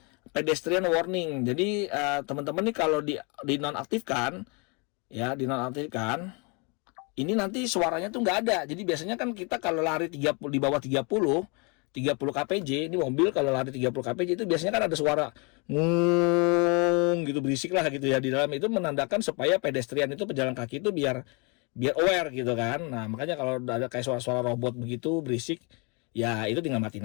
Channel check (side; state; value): right; quieter; 32.2 dB